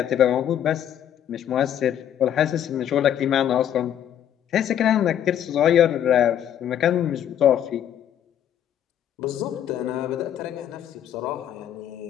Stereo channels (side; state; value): right; quieter; 10.1 dB